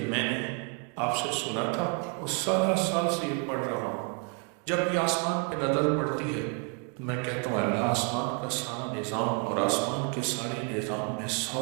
میں نے آپ سے سنا تھا اور سارا سال سے یہ پڑھ رہا ہوں، جب بھی آسمان پہ نظر پڑتی ہے تو میں کہتا ہوں اللہ آسمان کا سارا نظام اور آسمان کے سارے نظام میں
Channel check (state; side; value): quieter; left; 36.6 dB